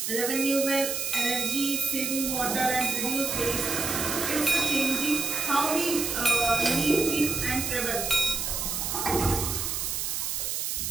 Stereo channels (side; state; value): right; noise; hiss, 1 dB below the sound